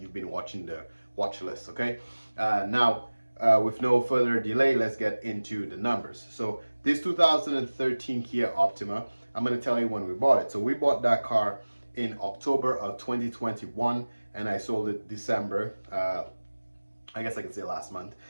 been watching the watch list. Okay, now with no further delay, let's get into the numbers. So this 2013 Kia Optima, I'm going to tell you when we bought it. So we bought that car in October of 2021 and I sold it December, I guess I can say last month,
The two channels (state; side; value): inverted; both; correlation -1.00